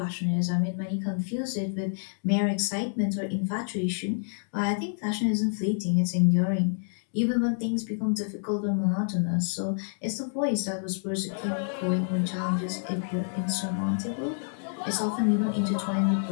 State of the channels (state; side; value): silent; right; digital silence